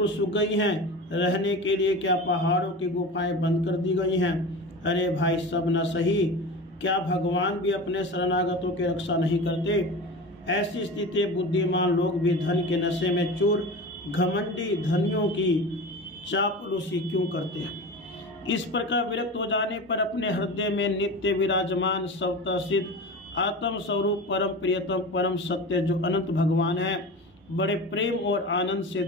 सूख गई हैं। रहने के लिए क्या पहाड़ों की गुफाएं बंद कर दी गई हैं। अरे भाई, सब न सही, क्या भगवान भी अपने शरणागतों की रक्षा नहीं करते। ऐसी स्थिति बुद्धिमान लोग भी धन के नशे में चूर घमंडी धनियों की चापलूसी क्यों करते हैं। इस प्रकार विरक्त हो जाने पर अपने हृदय में नित्य विराजमान स्वतः सिद्ध आत्म स्वरूप परम प्रियतम परम सत्य जो अनंत भगवान है, बड़े प्रेम और आनंद से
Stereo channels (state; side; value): normal; both; correlation 0.31